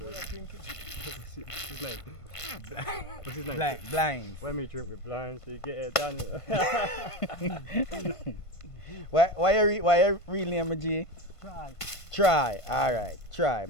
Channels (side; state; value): right; late; 1.5 ms